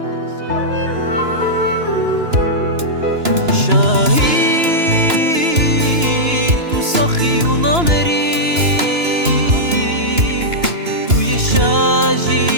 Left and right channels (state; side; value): late; left; 2.9 ms